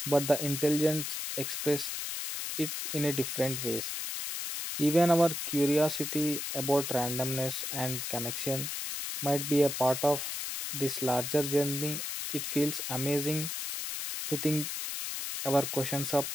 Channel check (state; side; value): noise; left; hiss, 4 dB below the sound